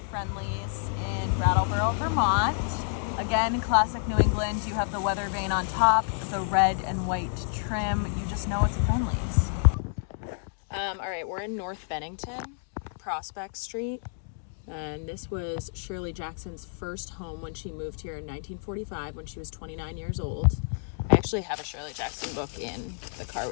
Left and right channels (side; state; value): right; silent; 59 dB below the other